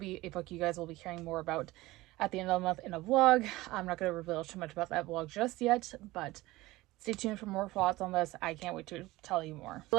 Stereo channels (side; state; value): left; quieter; 19.0 dB